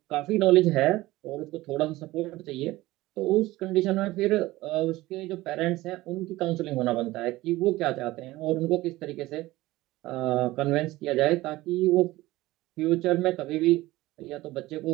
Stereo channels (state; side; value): quieter; left; 18.2 dB